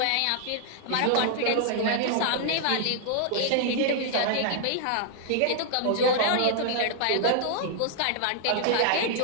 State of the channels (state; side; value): different; both; correlation -0.01